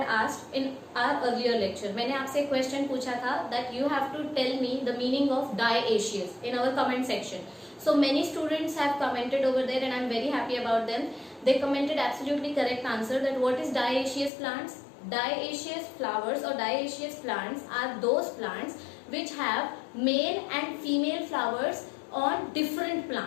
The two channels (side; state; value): right; drops out; at 14.3 s